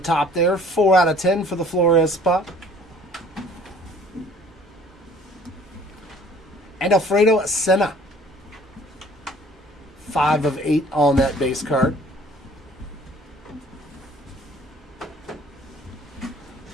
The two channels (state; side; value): normal; both; correlation 0.53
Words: there. 4 out of 10 for the Flores spot. And Alfredo Senna. 5 of 8 on that base card.